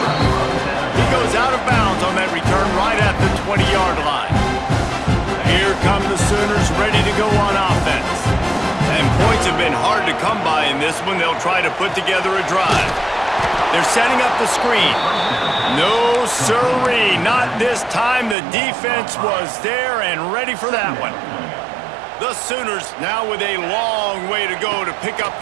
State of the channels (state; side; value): drops out; left; at 18.4 s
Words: He goes out of bounds on that return right at the 20-yard line. Here come the Sooners ready to go on offense. And points have been hard to come by in this one. They'll try to put together a drive. They're setting up the screen. No, sirree, not this time. The defense was there and ready for that one. The Sooners now with a long way to go to pick up